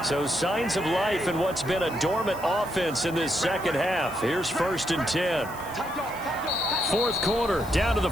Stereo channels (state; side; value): noise; left; hiss, 18 dB below the sound